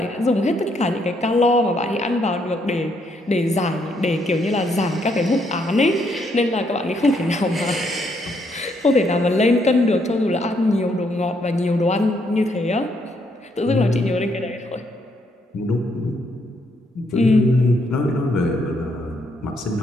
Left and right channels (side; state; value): both; normal; correlation 0.74